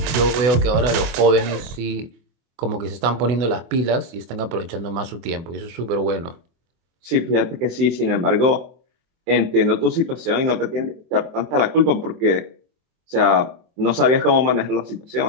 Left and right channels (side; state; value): left; late; 23 ms